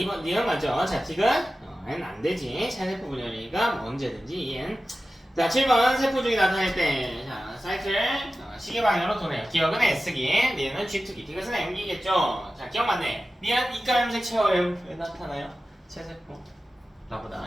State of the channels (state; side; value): normal; both; correlation 0.94